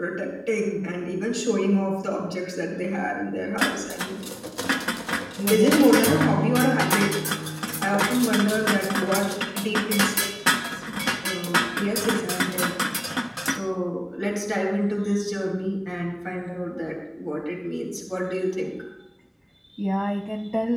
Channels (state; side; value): identical; both; correlation 1.00